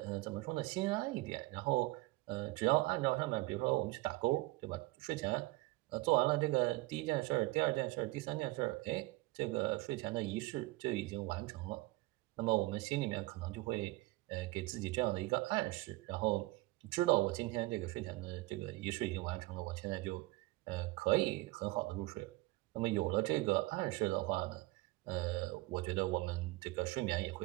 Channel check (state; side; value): quieter; left; 21.3 dB